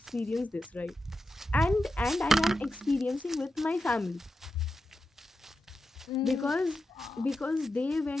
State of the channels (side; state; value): both; normal; correlation 0.89